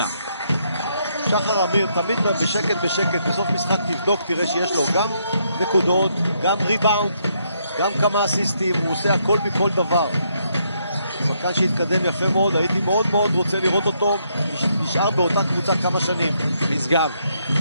שחר אמיר תמיד בשקט, בסוף משחק תבדוק, תראה שיש לו גם נקודות, גם ריבאונד, גם כמה אסיסטים, הוא עושה הכל מכל דבר. שחקן שהתקדם יפה מאוד, הייתי מאוד מאוד רוצה לראות אותו נשאר באותה קבוצה כמה שנים. משגב,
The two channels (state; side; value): inverted; both; correlation -0.75